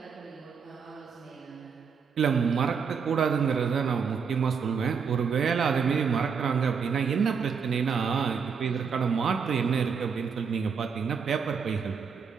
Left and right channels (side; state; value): left; quieter; 6.1 dB